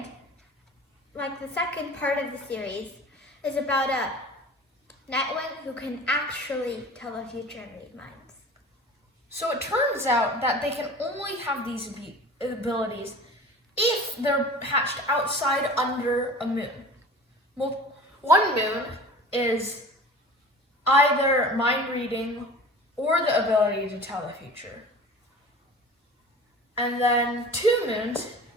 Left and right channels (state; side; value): normal; both; correlation 0.40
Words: part of the series is about a Nightwing who can actually tell the future and read minds. So it turns out that they can only have these abilities if they're hatched outside under a moon. Well, one moon is either mind reading or the ability to tell the future. And then 2 moons